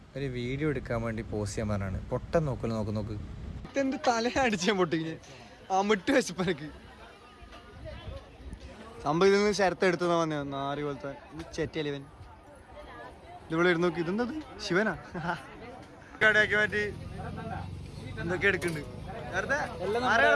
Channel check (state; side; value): identical; both; correlation 1.00